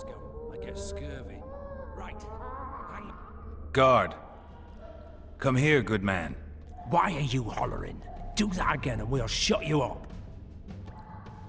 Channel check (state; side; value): identical; both; correlation 1.00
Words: I get scurvy. Right. Hangman. Guard. Come here, good man. Why are you hollering? Do that again and we'll shut you up.